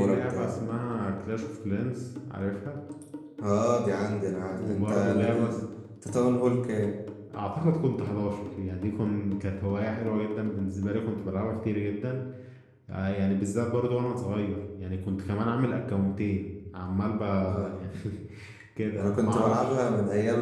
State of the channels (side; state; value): both; identical; correlation 1.00